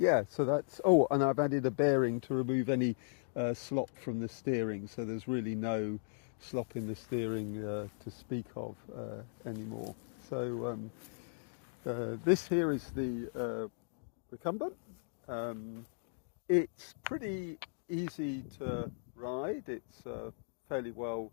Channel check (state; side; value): silent; right; digital silence